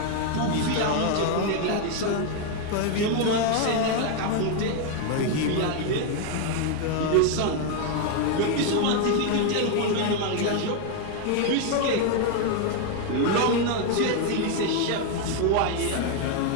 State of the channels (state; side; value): different; both; correlation 0.01